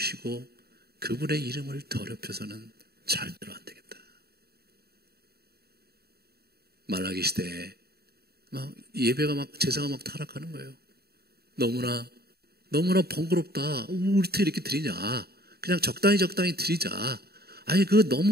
그분의 이름을 더럽혀서는 절대로 안 되겠다. 말라기 시대에 막 예배가 막 제사가 막 타락하는 거예요. 너무나 번거롭다. 우리 어떻게 이렇게 드리냐? 그냥 적당히 드리자. 아니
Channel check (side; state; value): left; late; 0.46 ms